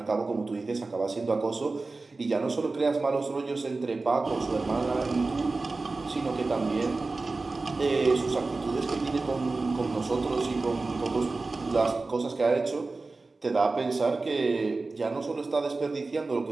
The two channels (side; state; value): left; quieter; 3.6 dB